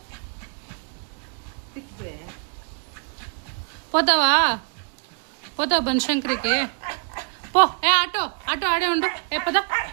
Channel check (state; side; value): quieter; left; 37.6 dB